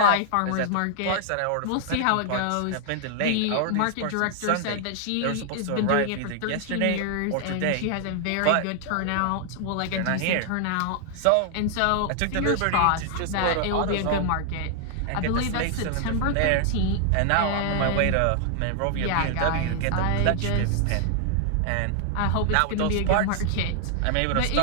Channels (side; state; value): both; different; correlation 0.00